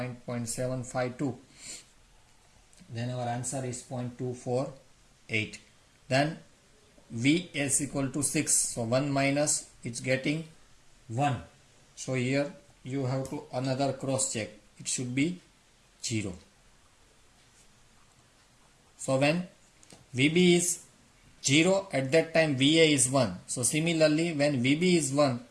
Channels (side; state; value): both; identical; correlation 1.00